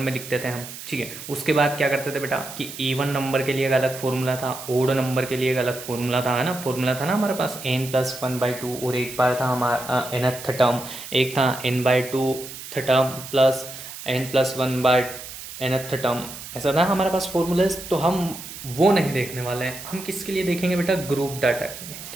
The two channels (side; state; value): right; noise; hiss, 12 dB below the sound